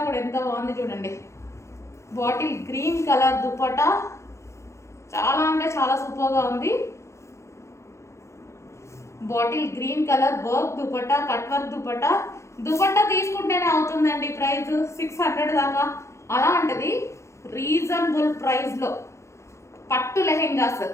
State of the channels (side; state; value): right; late; 0.14 ms